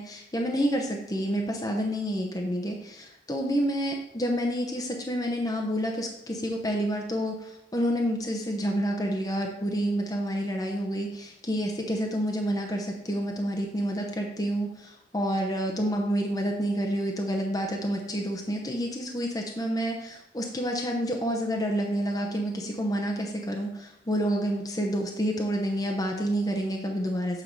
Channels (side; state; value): both; normal; correlation 0.77